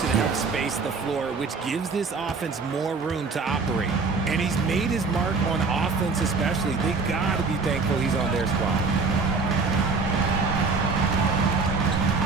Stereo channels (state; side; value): quieter; left; 4.4 dB